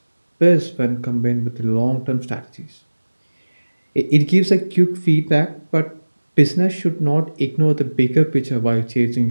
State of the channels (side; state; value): both; inverted; correlation -1.00